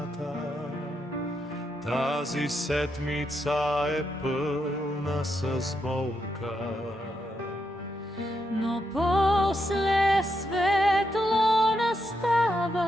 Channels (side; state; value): both; normal; correlation 0.82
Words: тази седмица е пълна с болка. Но после светло